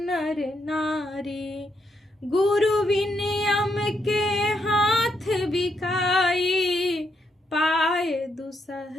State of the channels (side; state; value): both; normal; correlation 0.78